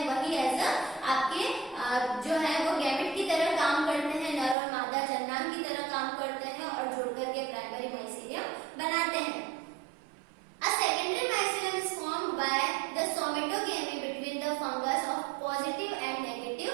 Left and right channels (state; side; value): drops out; left; at 4.5 s